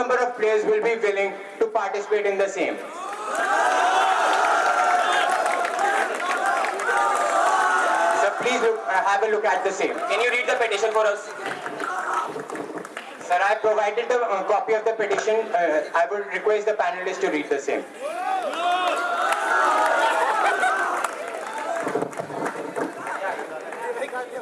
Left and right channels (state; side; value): identical; both; correlation 1.00